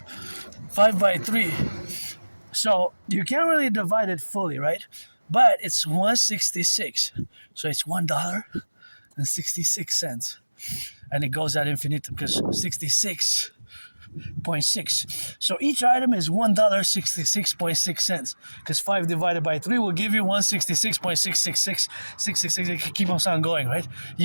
5 by 3. So you can't really divide it fully, right? But it's 166. So it's $1.66. And it goes ad infinitum because 66.6. So each item is $1.66.6 because 5 divided by 3 will give you 166.666. It keep on going, right?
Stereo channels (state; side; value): inverted; both; correlation -1.00